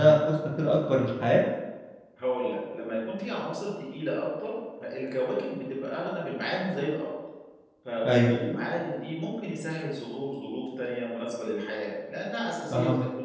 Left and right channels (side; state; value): both; identical; correlation 1.00